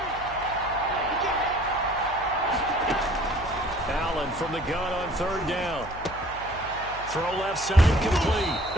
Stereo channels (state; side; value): noise; left; hum, 15 dB below the sound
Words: Allen from the gun on 3rd down. Throw left side complete.